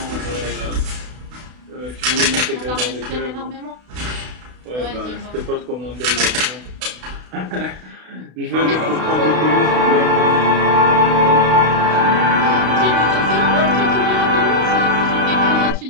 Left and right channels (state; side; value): late; left; 32 ms